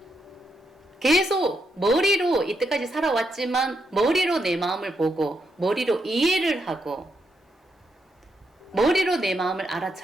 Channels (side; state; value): both; normal; correlation 0.81